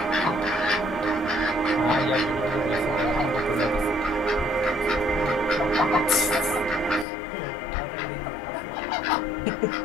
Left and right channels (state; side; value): drops out; right; at 7.1 s